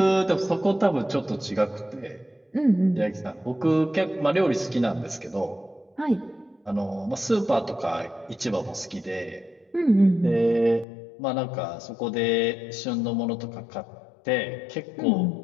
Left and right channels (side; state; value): right; drops out; at 10.9 s